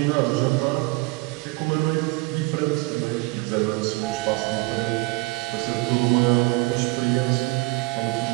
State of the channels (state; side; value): quieter; left; 23.8 dB